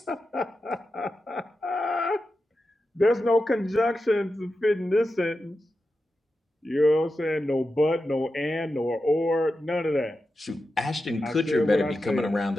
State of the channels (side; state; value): both; normal; correlation 0.90